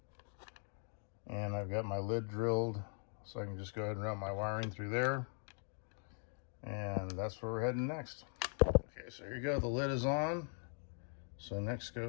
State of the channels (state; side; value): silent; right; 51 dB below the other